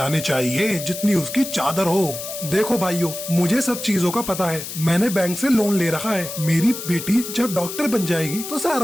चाहिए जितनी उसकी चादर हो। देखो भाइयों, मुझे सब चीजों का पता है। मैंने बैंक से लोन ले रखा है। मेरी बेटी जब डॉक्टर बन जाएगी तो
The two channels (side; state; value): left; noise; hiss, 8 dB below the sound